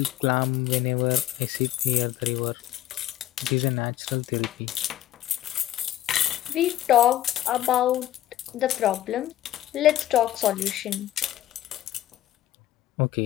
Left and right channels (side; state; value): right; quieter; 13.3 dB